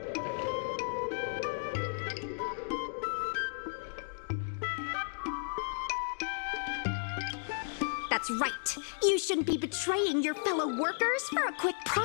That's right. You shouldn't be betraying your fellow workers for a quick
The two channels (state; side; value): silent; right; digital silence